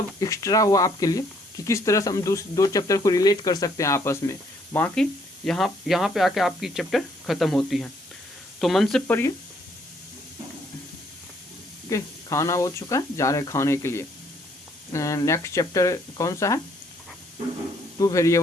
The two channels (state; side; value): normal; both; correlation 0.67